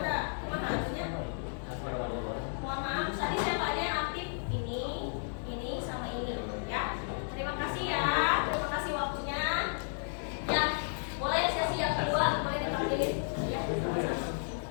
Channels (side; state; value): right; silent; digital silence